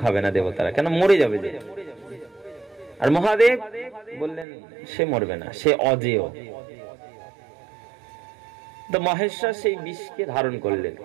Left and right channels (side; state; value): left; drops out; at 4.5 s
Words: খাবে না দেবতারা, কেন মরে যাবে যে। আর মহাদেব বললেন সে মরবে না, সে অজেয়। তো মহেশ্বর সেই বিষকে ধারণ করলেন,